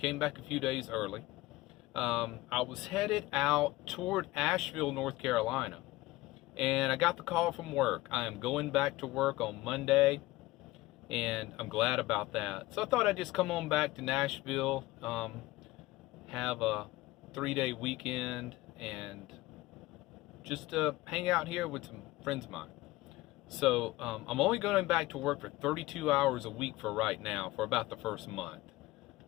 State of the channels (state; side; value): quieter; right; 19.0 dB